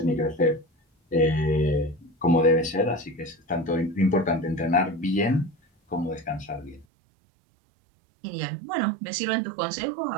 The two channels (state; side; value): drops out; left; at 6.9 s